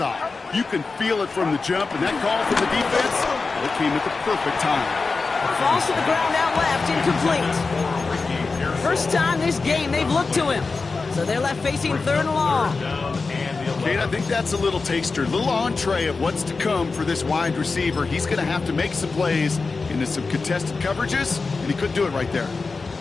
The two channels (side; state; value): right; quieter; 4.2 dB